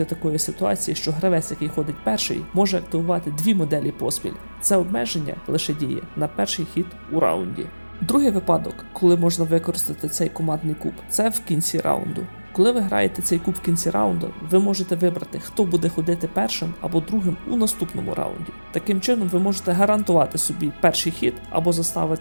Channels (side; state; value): both; inverted; correlation -1.00